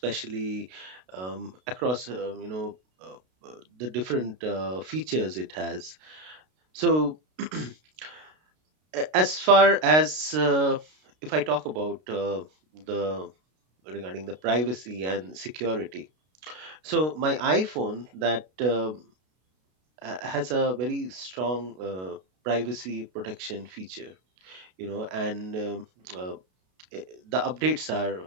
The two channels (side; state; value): left; late; 32 ms